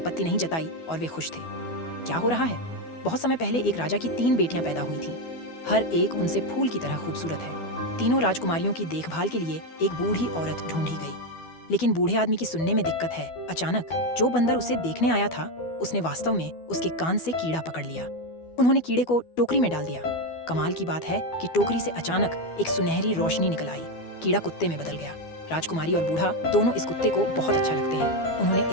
नहीं जताई और वे खुश थे। क्या हो रहा है? बहुत समय पहले एक राजा की 3 बेटियां पैदा हुई थीं। हर एक उनसे फूल की तरह खूबसूरत है। तीनों राजकुमारियों की देखभाल के लिए एक बूढ़ी औरत ढूंढी गई, लेकिन बूढ़े आदमी की सुनने में दिक्कत है। अचानक जो बंदर उसे देखने आया था, उसने वास्तव में उसके कान से कीड़ा पकड़ लिया। उन्होंने कीड़े को टोकरी में डाल दिया। कमाल की बात है कि टोकरी से अचानक एक सुनहरी रोशनी निकल आई। कीड़ा कुत्ते में बदल गया। राजकुमारी और बूढ़ा दोनों इस कुत्ते को बहुत अच्छा लगते हैं। उन्होंने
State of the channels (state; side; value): late; right; 12 ms